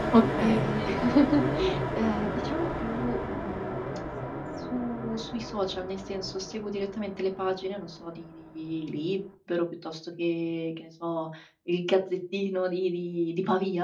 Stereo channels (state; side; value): identical; both; correlation 1.00